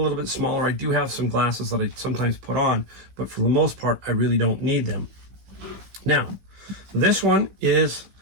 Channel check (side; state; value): left; late; 15 ms